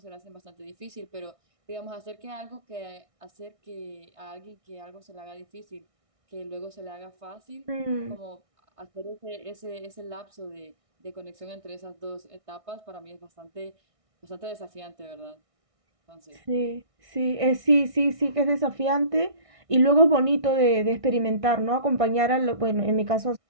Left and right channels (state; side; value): late; left; 1.6 ms